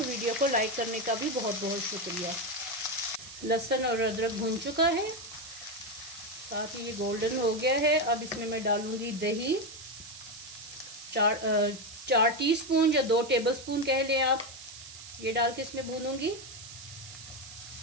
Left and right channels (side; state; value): right; noise; hiss, 14 dB below the sound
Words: को लाइक करने का भी बहुत बहुत शुक्रिया। लहसुन और अदरक भून चुका है, साथ ही ये गोल्डन हो गया है। अब इसमें मैं डालूंगी दही 4 टीस्पून या 2 टेबलस्पून कह लें आप, ये डाल के इसमें भूनूंगी।